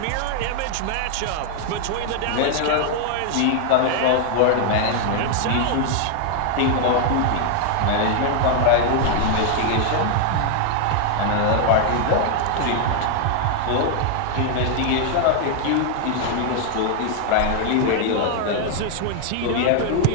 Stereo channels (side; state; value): both; different; correlation 0.00